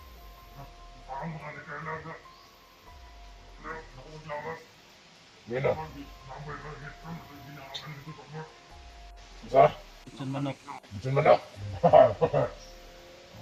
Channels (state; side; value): identical; both; correlation 1.00